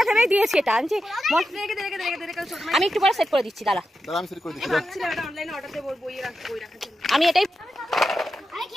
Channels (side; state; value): both; normal; correlation 0.89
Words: ভেবেই দিয়েছি, এটা আমি একটু পরে সেট করে দিচ্ছি। দাঁড়া আমি এটাই